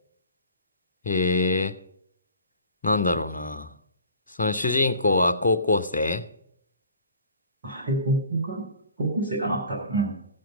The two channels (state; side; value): inverted; both; correlation -0.46